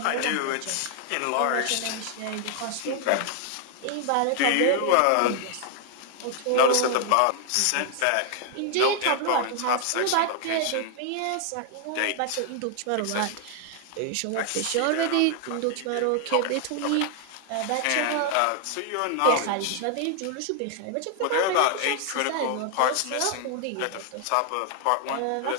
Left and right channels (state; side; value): different; both; correlation 0.00